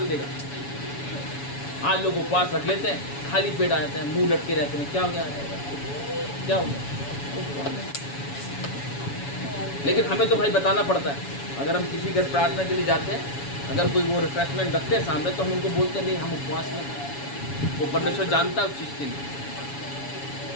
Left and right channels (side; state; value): right; late; 7.1 ms